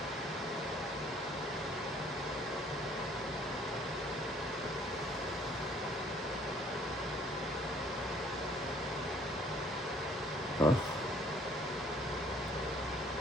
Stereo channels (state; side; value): normal; both; correlation 0.59